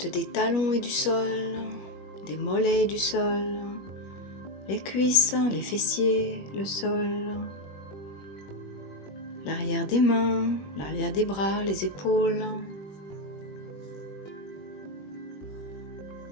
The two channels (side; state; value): right; late; 21 ms